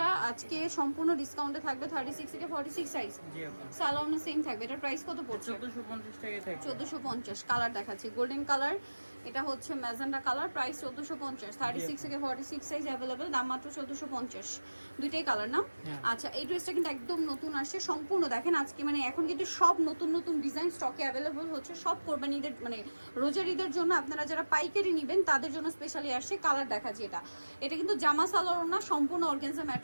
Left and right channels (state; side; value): inverted; both; correlation -1.00